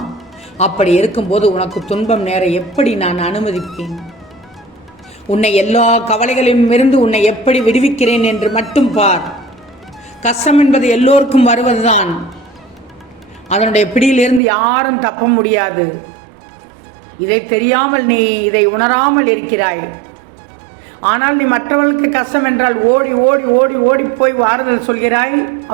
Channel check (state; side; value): drops out; left; at 14.4 s